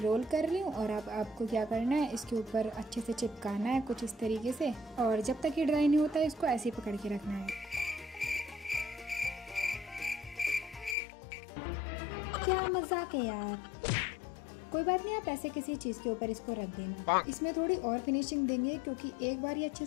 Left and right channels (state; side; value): drops out; right; at 11.0 s